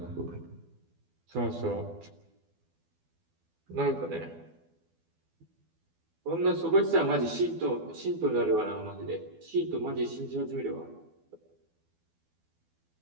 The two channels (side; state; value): left; late; 12 ms